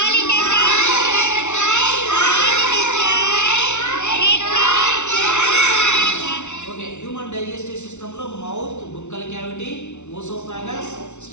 okay. Human digestive సిస్టంలో mouth buccal cavity, oesophagus,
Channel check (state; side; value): late; right; 0.83 ms